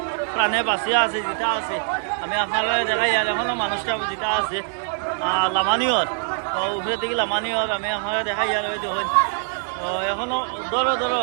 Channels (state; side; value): silent; left; 62 dB below the other